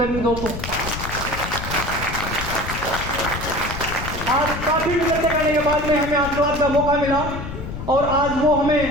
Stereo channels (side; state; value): left; noise; rumble, 7 dB below the sound